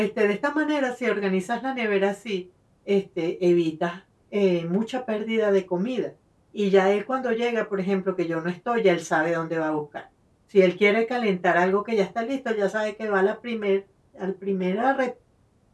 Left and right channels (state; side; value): identical; both; correlation 1.00